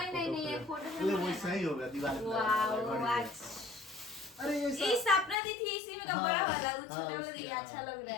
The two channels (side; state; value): right; drops out; at 5.4 s